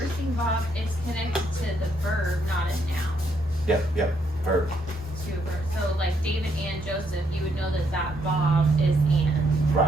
Vav, it's connected to the verb, not a noun. Yep, verb. To a verb. So like David and Joseph, you would know that Vav is and.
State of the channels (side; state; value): both; normal; correlation 0.74